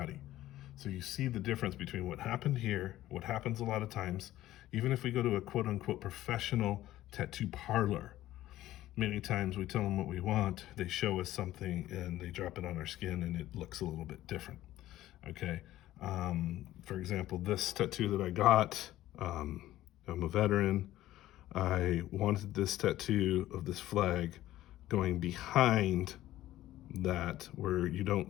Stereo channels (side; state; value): right; quieter; 14.6 dB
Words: So you see the difference between what happened here, what happens a lot of times, even if we go to a quote unquote professional tattoo parlor. Many times we tell them what we want, they show us something and they drop it on our skin and it looks a little bit different. Okay. For example, this tattoo that I got, I'm a veteran. I wanted this tattoo of this flag going behind that where you